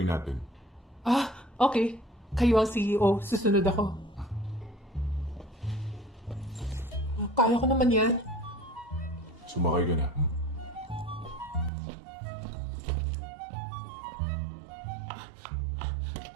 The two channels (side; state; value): left; drops out; at 11.7 s